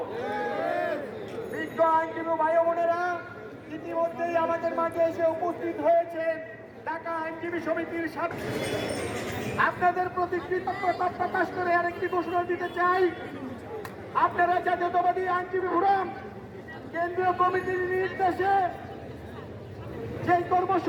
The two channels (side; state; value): both; identical; correlation 1.00